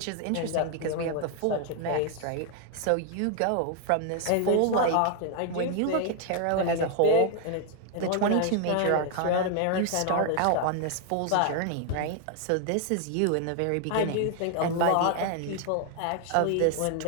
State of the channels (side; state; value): both; different; correlation 0.00